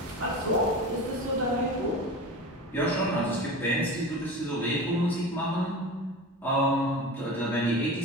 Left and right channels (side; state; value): both; normal; correlation 0.30